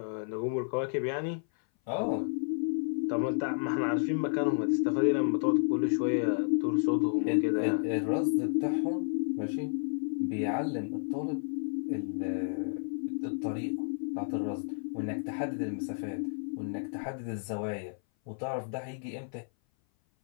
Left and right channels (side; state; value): right; silent; 56 dB below the other